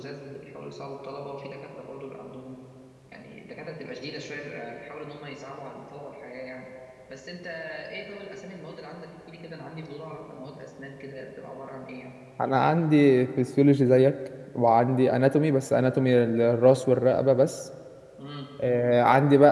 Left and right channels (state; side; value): identical; both; correlation 1.00